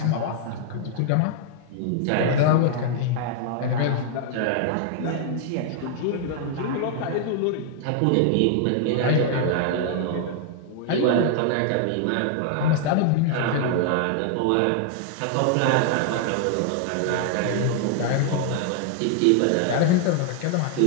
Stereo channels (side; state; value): both; different; correlation 0.00